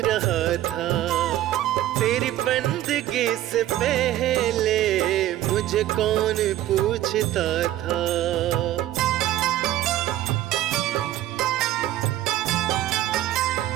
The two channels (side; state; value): left; quieter; 13.8 dB